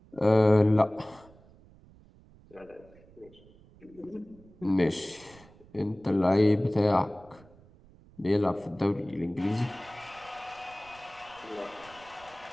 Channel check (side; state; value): right; noise; rumble, 25 dB below the sound